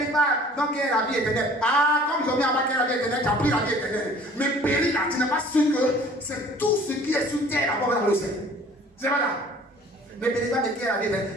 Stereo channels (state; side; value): normal; both; correlation 0.51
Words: pas, donc il y a la vie éternelle. Ah, comme ils ont mis en bas qu'il y a la vie éternelle, tu as pris la vie éternelle. Mais périr là, tu n'es pas sûr que c'est tout ce qui est sur terre d'abord dans le ciel. C'est pas là. Ne périsse pas de qui est la vie éternelle.